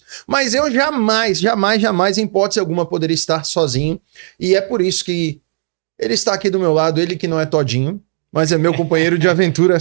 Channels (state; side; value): silent; left; digital silence